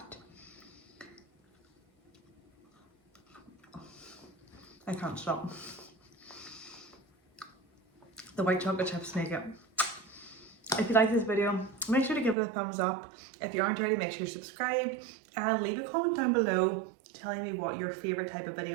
I can't stop. The white chocolate chips make it. If you like this video, make sure to give it a thumbs up. If you aren't already, make sure to subscribe and leave a comment down below telling me what your favorite type of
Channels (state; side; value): drops out; left; at 12.4 s